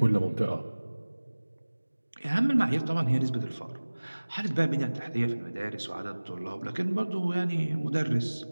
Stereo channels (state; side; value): inverted; both; correlation -1.00